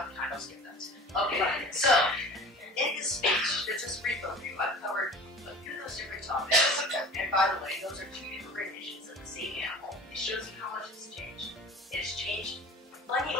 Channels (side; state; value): both; normal; correlation 0.42